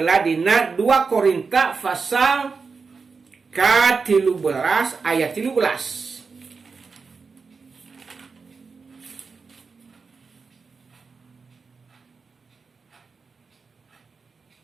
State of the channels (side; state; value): left; quieter; 4.9 dB